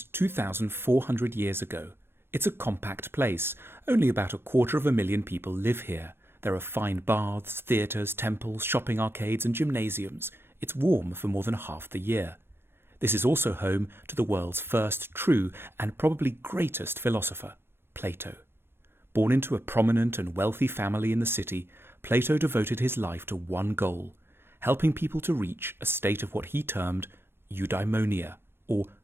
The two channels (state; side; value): late; left; 0.11 ms